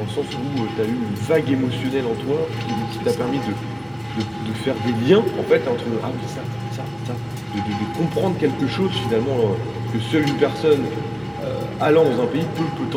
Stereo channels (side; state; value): both; identical; correlation 1.00